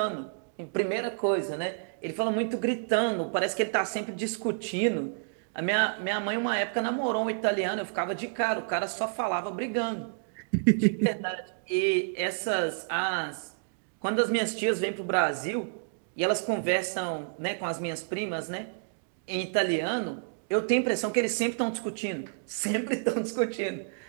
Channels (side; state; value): left; silent; digital silence